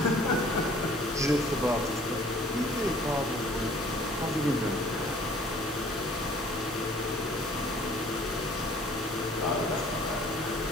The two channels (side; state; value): both; normal; correlation 0.54